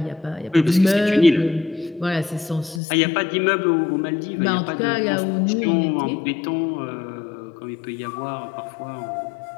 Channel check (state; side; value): drops out; right; at 2.8 s